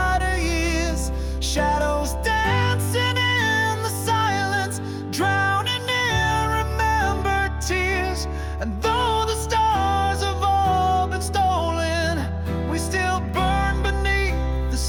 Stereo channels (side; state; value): both; identical; correlation 1.00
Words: of years. Shadows dancing in the silence, drowning in remembered tears. And though the stars have all been stolen, we still burn beneath the